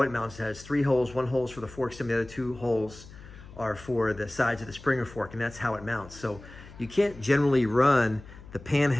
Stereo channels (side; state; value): left; noise; hum, 18 dB below the sound